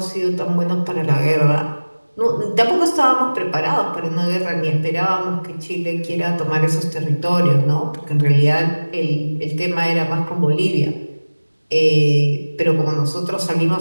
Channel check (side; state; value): both; inverted; correlation -1.00